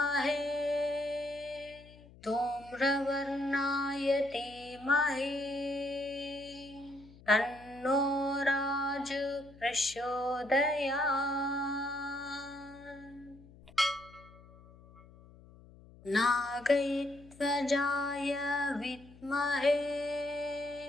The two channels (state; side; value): noise; left; hum, 22 dB below the sound